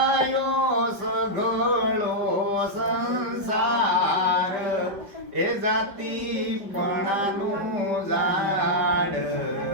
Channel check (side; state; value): left; late; 5.0 ms